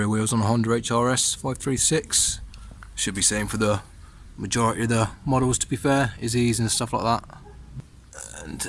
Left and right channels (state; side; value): identical; both; correlation 1.00